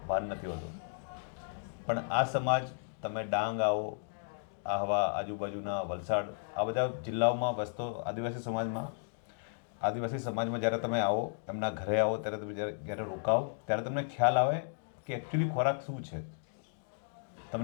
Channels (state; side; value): silent; right; digital silence